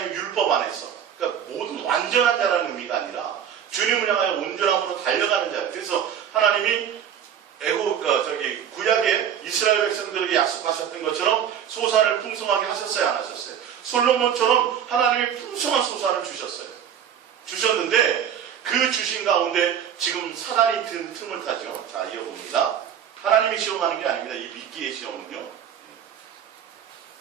율법 안에서, 그러니까 모든 완전한 자라는 의미가 아니라 주님을 향하여 온전함으로 달려가는 자. 그래서 하나님이 구약의 이스라엘 백성들에게 약속하셨던 것처럼 소산을 풍성하게 하셨어요, 안 하셨어요? 솔로몬처럼 하나님이 풍성한 소산을 주셨는데 그 주신 가운데 지금 사단이 든 틈을 타죠. 자, 이어봅니다. 하나님이 시험하는 게 아닙니다. 이 믿기의 시험은요.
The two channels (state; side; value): quieter; left; 8.9 dB